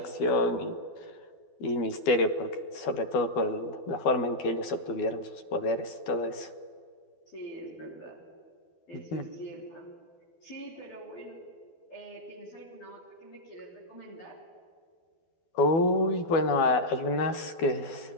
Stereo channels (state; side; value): late; right; 12 ms